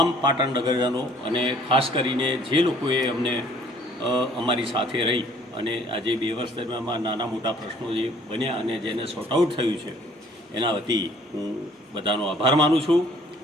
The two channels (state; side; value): normal; both; correlation 0.57